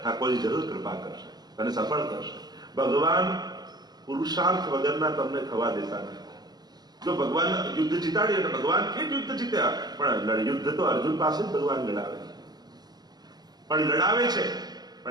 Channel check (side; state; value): left; late; 0.19 ms